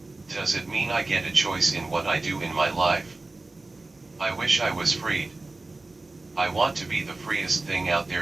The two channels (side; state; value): left; quieter; 3.2 dB